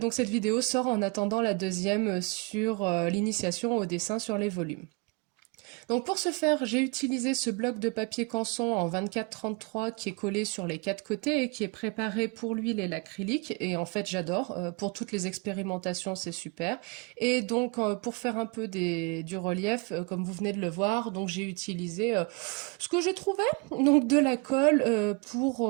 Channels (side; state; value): left; quieter; 29.0 dB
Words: cette vidéo sort en attendant la deuxième sur l'initiation au dessin sur les volumes. Donc pour ce faire, j'ai utilisé ce bloc de papier canson en 24-33 qui est collé sur les quatre côtés et qui est préparé pour l'huile et l'acrylique. Et en fait, j'adore. Pour toutes les expérimentations, c'est super. Et donc pour faire un peu du relief, comme vous venez de le voir, donc j'ai utilisé ce que j'ai trouvé, donc de la colle